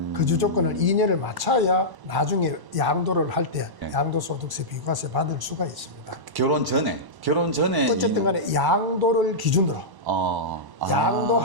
거주 조건을 2년을 맞춰야 나중에 양도를 할 때 네. 양도소득세 비과세 받을 수가 있습니다. 결혼 전에 어쨌든 간에 양도를 기준으로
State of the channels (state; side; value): late; left; 1.0 ms